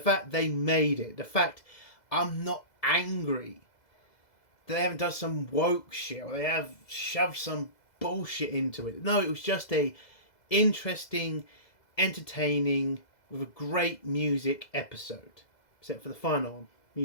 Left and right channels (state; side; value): late; right; 2.0 ms